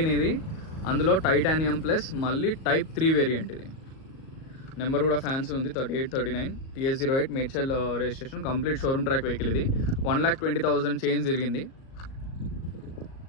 ఇది. అందులో టైటానియం ప్లస్ మళ్ళీ టైప్ 3 వేరియంట్. ఇది నెంబర్ కూడా ఫ్యాన్సీ ఉంది, 3839 TS08 Medchal registration. Complete showroom track vehicle. ఇది 1,20,000 చేంజ్ తిరిగింది.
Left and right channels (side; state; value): right; late; 37 ms